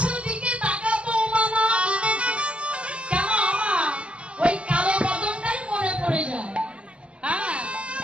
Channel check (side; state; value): left; late; 0.057 ms